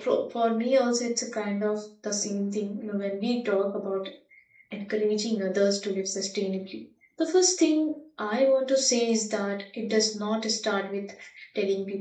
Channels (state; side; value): identical; both; correlation 1.00